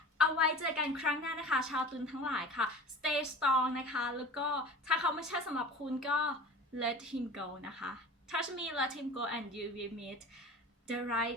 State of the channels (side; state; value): both; normal; correlation 0.38